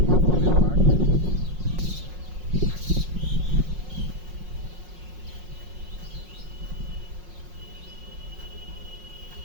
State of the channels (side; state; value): left; late; 5.5 ms